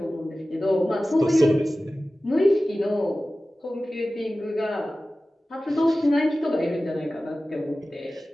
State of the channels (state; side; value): normal; both; correlation 0.96